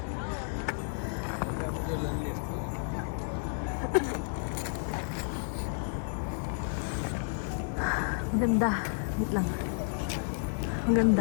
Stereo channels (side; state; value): right; silent; 57 dB below the other